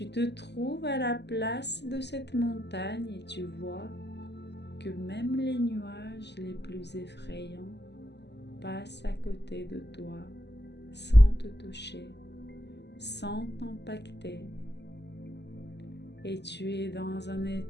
te trouves à la place de cette montagne et tu vois que même les nuages les plus effrayants passent à côté de toi sans te toucher, sans t'impacter. Et tu es dans un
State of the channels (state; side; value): late; right; 0.50 ms